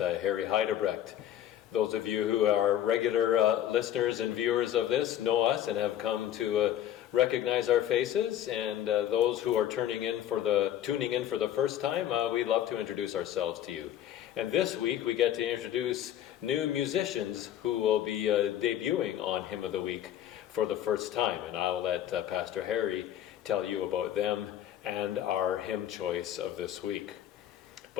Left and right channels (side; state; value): right; quieter; 11.3 dB